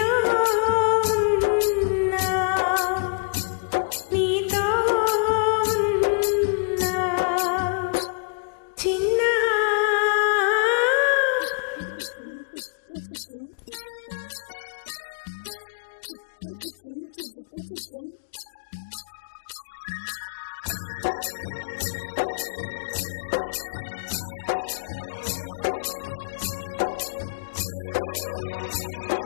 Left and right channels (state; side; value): quieter; right; 38.5 dB